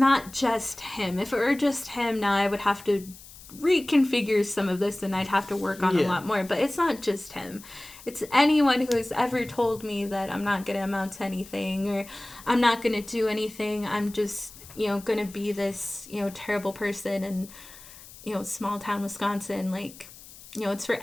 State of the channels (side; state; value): left; noise; hiss, 19 dB below the sound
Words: just him. If it were just him, now I would have to reconfigure some of this, and I'd have to work on a lot more. But it's not just him. It's anyone who has ever told me that I'm not going to amount to anything, or I'm not going to do anything. I'm just, going to be this, terrible person in, small town Wisconsin. Like, it's for